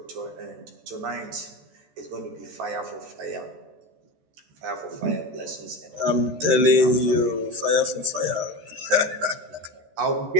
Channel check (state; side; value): late; left; 14 ms